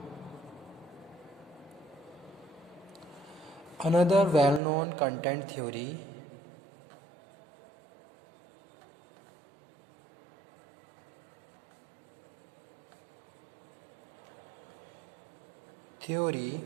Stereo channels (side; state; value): left; drops out; at 4.6 s